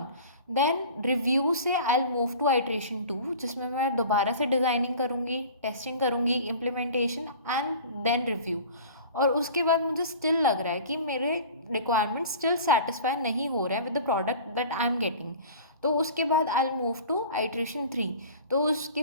देन रिव्यू से I will move to iteration 2, जिसमें मैं दोबारा से डिज़ाइनिंग करूँगी, टेस्टिंग करूँगी, इम्प्लीमेंटेशन एंड देन रिव्यू। और उसके बाद मुझे स्टिल लग रहा है कि मेरे रिक्वायरमेंट्स स्टिल सेटिस्फाई नहीं हो रहे हैं with the product that I am getting. तो उसके बाद I will move to iteration 3। तो उसके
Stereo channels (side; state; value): both; inverted; correlation -0.41